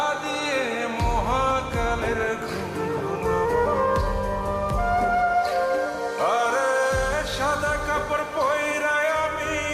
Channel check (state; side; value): identical; both; correlation 1.00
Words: দিয়ে মহাকালের ঘুম ঘুমাবো। আরে সাদা কাপড় পয়রায় আমি